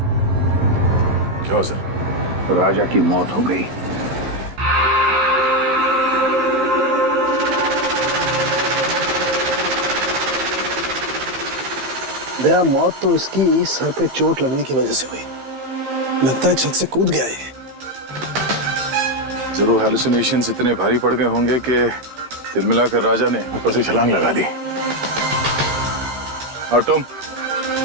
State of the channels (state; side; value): late; left; 15 ms